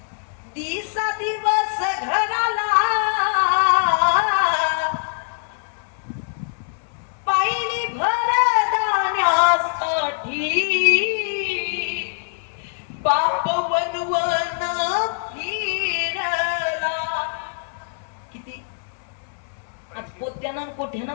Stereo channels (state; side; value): silent; right; digital silence